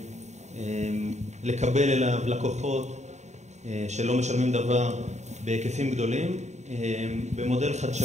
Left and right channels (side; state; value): left; late; 0.33 ms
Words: לקבל אליו לקוחות שלא משלמים דבר בהיקפים גדולים, במודל